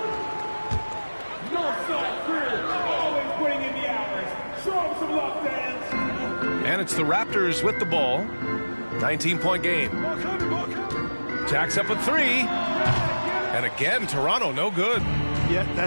And it's the Raptors with the ball. 19-point game. Jacks up a 3. And again, Toronto, no good. Yeah,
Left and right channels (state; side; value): inverted; both; correlation -1.00